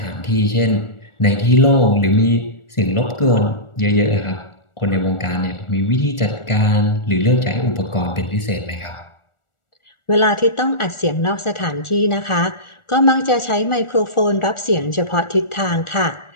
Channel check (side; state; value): right; late; 1.4 ms